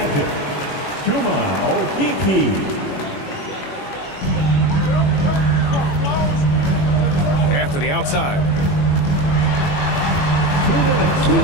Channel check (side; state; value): right; late; 21 ms